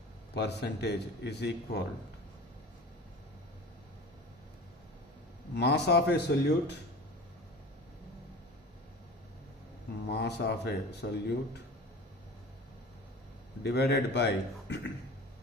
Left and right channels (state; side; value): normal; both; correlation 0.38